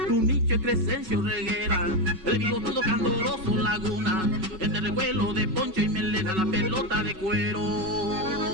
Tunique y Crescencio Reguera, el bigotudo candoroso Laguna, entre el revuelo de Poncho y Melena, la pelota de cuero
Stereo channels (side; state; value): left; late; 5.4 ms